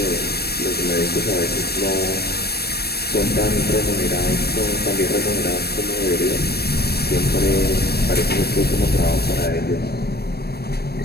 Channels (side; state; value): right; late; 0.47 ms